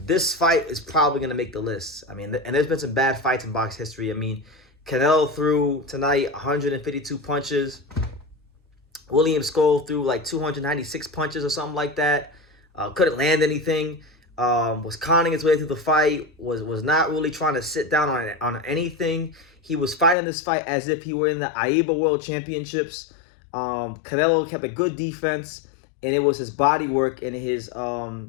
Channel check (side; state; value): right; drops out; at 20.2 s